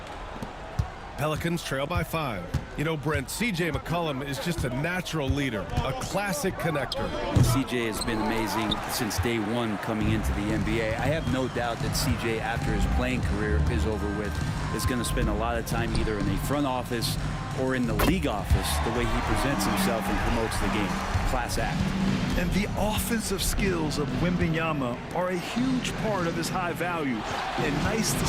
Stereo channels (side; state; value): both; identical; correlation 1.00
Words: Pelicans trail by 5. You know, Brent, C.J. McCollum is just a natural leader, a classic connector. C.J. has been amazing since day one coming into the NBA. I have no doubt that C.J., after his playing career is over with, is going to spend a lot of time either in the front office or in the league office, the way he presents himself and promotes the game. Class act. And the offensive skills of Wembanyama are a huge part of his high value, and nice to